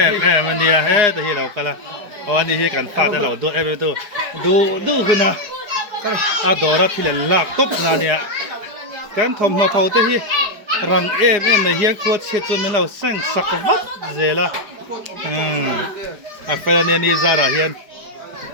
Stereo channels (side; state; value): left; late; 4.9 ms